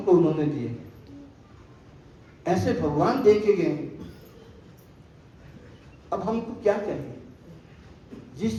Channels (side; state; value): both; identical; correlation 1.00